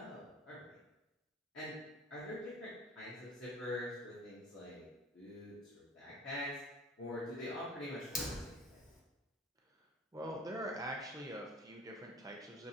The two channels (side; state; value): both; normal; correlation 0.44